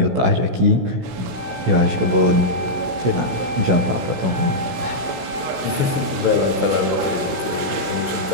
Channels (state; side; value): late; left; 16 ms